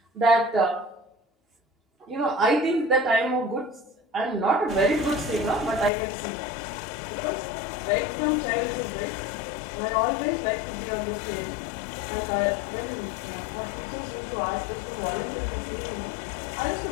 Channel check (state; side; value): drops out; right; at 5.9 s